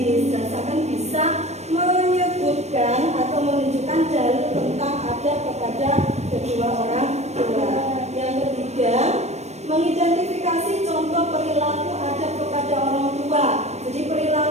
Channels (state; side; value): late; left; 0.32 ms